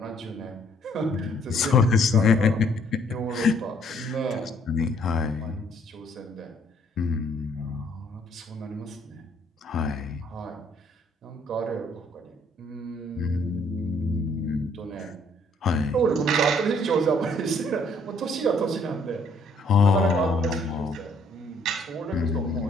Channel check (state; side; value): normal; both; correlation 0.64